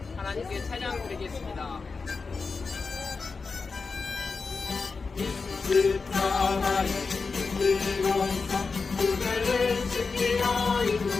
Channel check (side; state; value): right; quieter; 4.5 dB